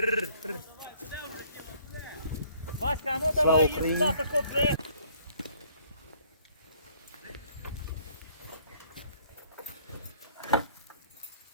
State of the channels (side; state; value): both; inverted; correlation -0.60